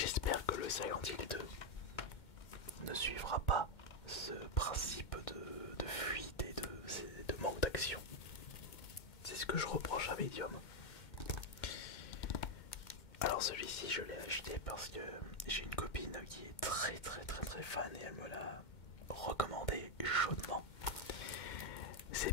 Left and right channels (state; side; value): late; right; 2.2 ms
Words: que le Silent Hill 2 ne suivra pas ce principe de fuite et de manque d'action. C'est ce que je reproche à Medium. Alors celui-ci je l'ai acheté parce que j'ai une copine qui est très fan et elle me l'a recommandé chaudement. C'est